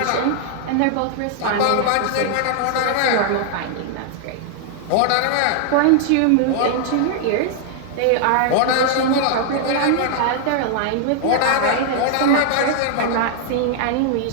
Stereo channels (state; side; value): different; both; correlation 0.00